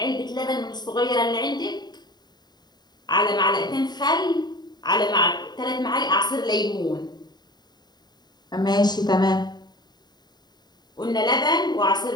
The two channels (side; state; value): right; late; 0.20 ms